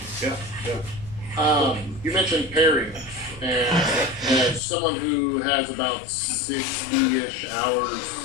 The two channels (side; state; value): right; drops out; at 4.6 s